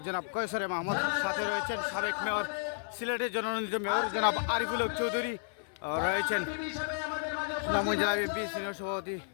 জনাব কয়সরে মাহমুদ। সাথে রয়েছেন সাবেক মেয়র, সিলেটের জননন্দিত মেয়র জনাব আরিফুল হক চৌধুরী, রয়েছেন সুনামগঞ্জ জেলা বিএনপি সিনিয়র সভাপতি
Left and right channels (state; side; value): silent; right; 56 dB below the other